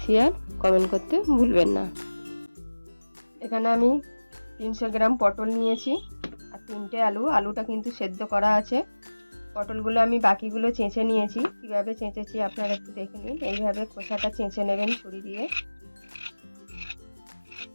শেয়ার, কমেন্ট করতে ভুলবেন না। এখানে আমি 300 গ্রাম পটল নিয়েছি আর 3টে আলুটা কিন্তু সেদ্ধ করা আছে। পটলগুলো আমি বাকিগুলো চেঁচে নিয়েছি। কীভাবে চেঁচেছি আপনারা একটু দেখে নিন। এইভাবে খোসাটা চেঁচে নেবেন ছুরি দিয়ে।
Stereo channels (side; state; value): both; inverted; correlation -1.00